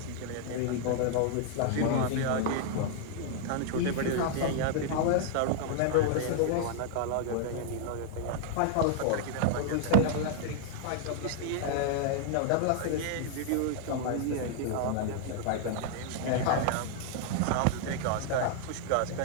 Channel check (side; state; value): both; different; correlation 0.00